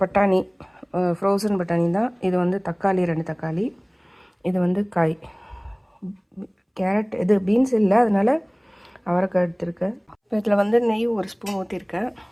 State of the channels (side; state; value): both; identical; correlation 1.00